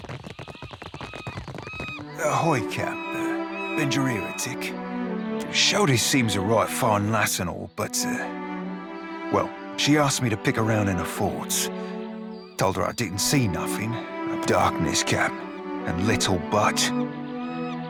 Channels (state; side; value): identical; both; correlation 1.00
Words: Ahoy, Cap. Been your heretic. Shody seems a right fine lass and all, but, well, she asked me to pick around in the forts. Told her I didn't see nothing. Darkness, Cap, and little but.